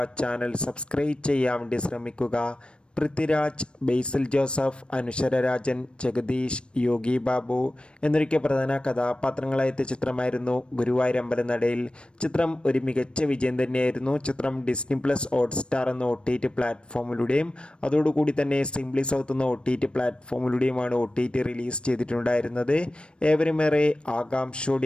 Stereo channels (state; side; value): late; right; 0.056 ms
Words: ചാനൽ സബ്സ്ക്രൈബ് ചെയ്യാൻ വേണ്ടി ശ്രമിക്കുക. പൃഥ്വിരാജ്, ബേസിൽ ജോസഫ്, അനുശ്വര രാജൻ, ജഗദീഷ്, യോഗി ബാബു എന്നൊക്കെ പ്രധാന കഥാപാത്രങ്ങളായെത്തിയ ചിത്രമായിരുന്നു ഗുരുവായൂരമ്പലനടയിൽ. ചിത്രം ഒരു മികച്ച വിജയം തന്നെയായിരുന്നു. ചിത്രം ഡിസ്നി പ്ലസ് ഹോട്ട്സ്റ്റാർ എന്ന OTT പ്ലാറ്റ്ഫോമിലൂടെയും അതോടുകൂടി തന്നെ സിംപ്ലി സൗത്ത് എന്ന OTT പ്ലാറ്റ്ഫോമിലൂടെയുമാണ് OTT റിലീസ് ചെയ്തിട്ടുണ്ടായിരുന്നത്. ഏവരുമേറെ